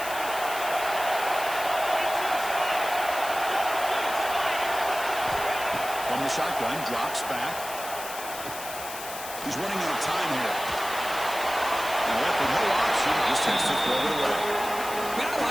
From the shotgun, drops back. He's running out of time here. And left with no option, just has to throw it away. Man, I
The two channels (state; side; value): noise; left; hiss, 10 dB below the sound